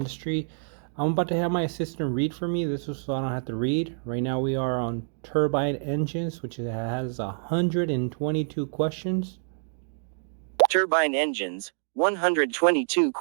I'm about to have my assistant read for me. This is so I don't have to read. Right now we are on turbine engines, which has 122 questions. Turbine engines, 122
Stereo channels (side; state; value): left; silent; digital silence